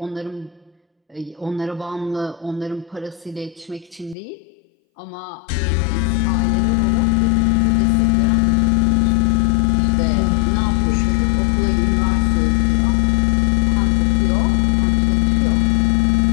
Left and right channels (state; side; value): drops out; right; at 4.2 s